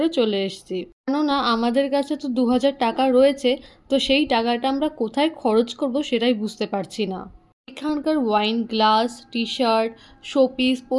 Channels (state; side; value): identical; both; correlation 1.00